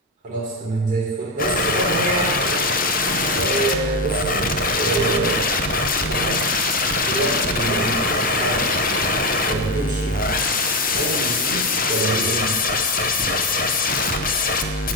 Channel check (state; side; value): normal; both; correlation 0.11